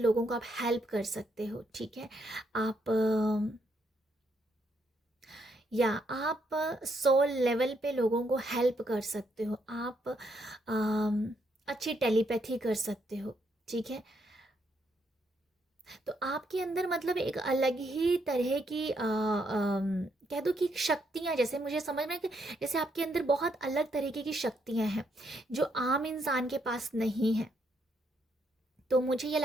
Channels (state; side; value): normal; both; correlation 0.75